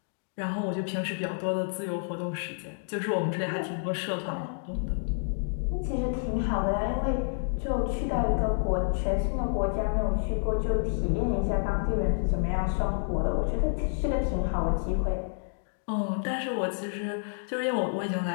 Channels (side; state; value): right; silent; digital silence